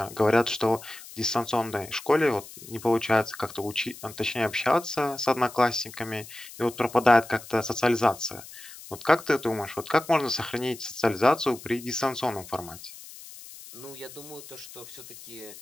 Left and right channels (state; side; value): noise; left; hiss, 16 dB below the sound